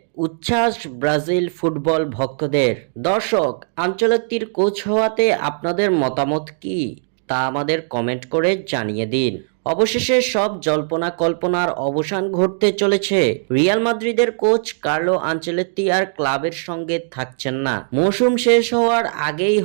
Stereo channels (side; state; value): left; silent; digital silence